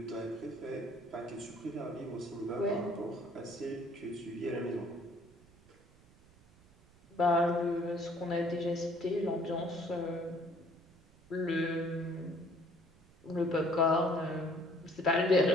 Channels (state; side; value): noise; right; rumble, 27 dB below the sound